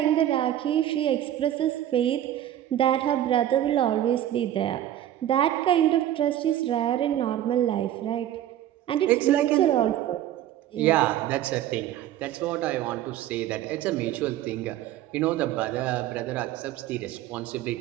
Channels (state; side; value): quieter; left; 12.1 dB